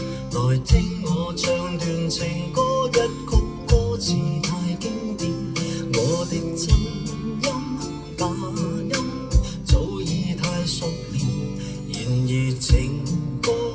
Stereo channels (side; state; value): both; identical; correlation 1.00